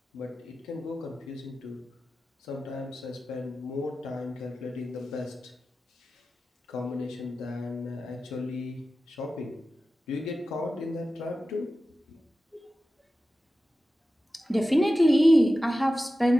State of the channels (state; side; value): normal; both; correlation 0.94